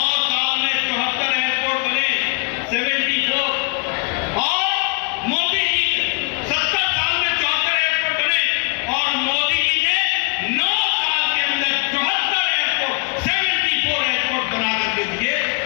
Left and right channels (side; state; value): right; quieter; 31.4 dB